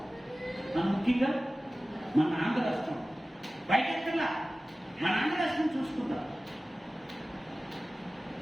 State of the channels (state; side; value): normal; both; correlation 0.96